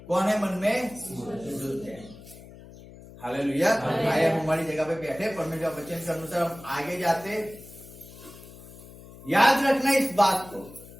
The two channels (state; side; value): noise; left; hum, 18 dB below the sound